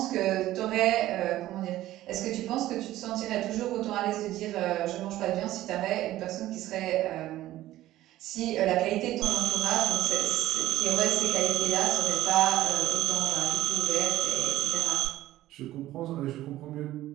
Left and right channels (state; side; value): quieter; left; 14.9 dB